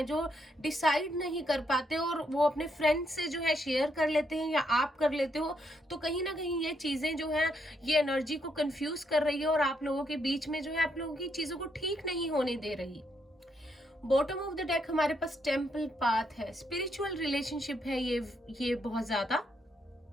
जो डिसाइड नहीं कर पाते और वो अपने फ्रेंड्स से जो है शेयर कर लेते हैं या आप कर लेते हो। तो कहीं ना कहीं ये चीजें जो है ये एनर्जी को कंफ्यूज कर रही है, और आप लोगों के बीच में जो है आप लोगों की चीजों को ठीक नहीं होने दे रही। बॉटम ऑफ द डेक हमारे पास टेम्पल पाथ है, स्पिरिचुअल रिलेशनशिप है ये बहुत ज्यादा,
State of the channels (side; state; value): both; normal; correlation 0.77